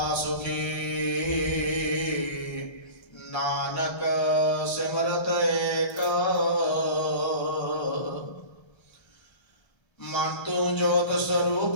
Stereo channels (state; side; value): late; right; 1.3 ms